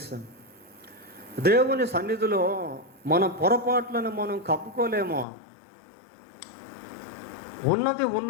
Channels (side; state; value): right; drops out; at 5.2 s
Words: దేవుని సన్నిధిలో మన పొరపాట్లను మనం కప్పుకోలేమో. ఉన్నది